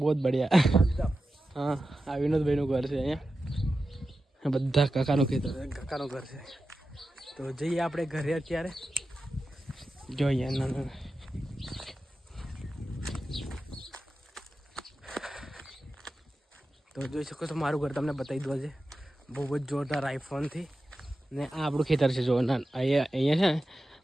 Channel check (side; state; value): both; normal; correlation 0.92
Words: જ બઢિયા. હા આ વિનોદભાઈનું ઘર છે અહીંયા. બધા કાકાનું ખેતર કાકાનું ઘર છે. તો જઈએ આપણે ઘરે અત્યારે. જો અહીંયા ના તો જોઈ શકો છો મારું ઘર તમને બતાવી દો છે બહુ જ જોરદાર આઈફોનથી. ને આ આપણું ખેતર છે. જો અહીંયા છે ને